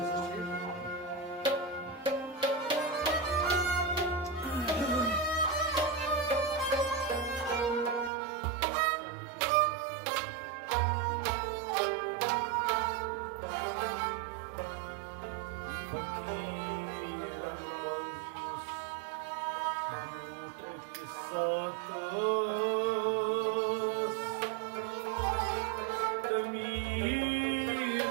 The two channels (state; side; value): drops out; left; at 8.1 s